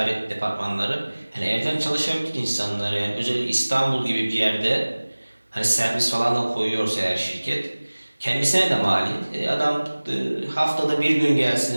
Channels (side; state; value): both; inverted; correlation -1.00